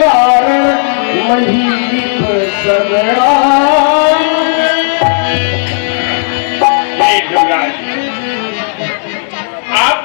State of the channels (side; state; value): right; silent; 71 dB below the other